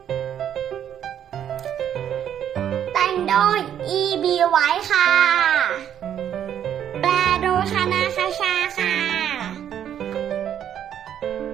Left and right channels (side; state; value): left; quieter; 9.7 dB